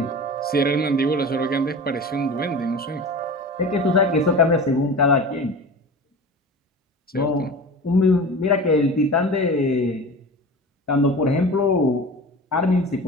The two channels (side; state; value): both; normal; correlation 0.34